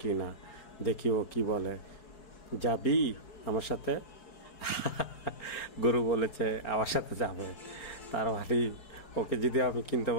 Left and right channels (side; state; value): right; late; 4.4 ms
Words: কি না, দেখি ও কি বলে। যাবি আমার সাথে? গরু বলেছে আমার সাথে যাবে। তার মানে ওকে যদি আমি কিনতে